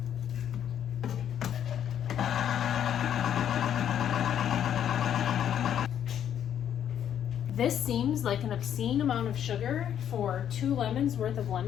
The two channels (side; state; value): right; quieter; 9.7 dB